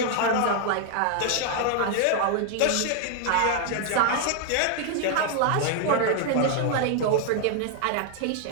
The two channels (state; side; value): different; both; correlation 0.00